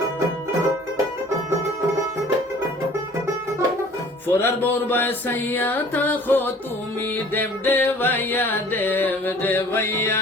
ফোরার বউর বাই সাইয়া তাকো তুমি দেব দেবাইয়া দেব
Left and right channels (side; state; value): both; normal; correlation 0.50